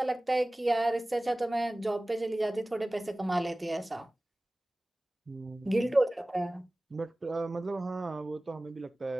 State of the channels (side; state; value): both; normal; correlation 0.98